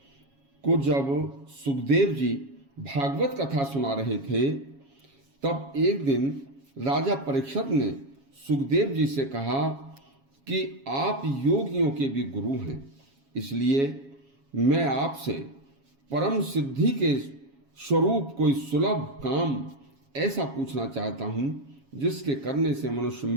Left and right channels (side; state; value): left; late; 7.3 ms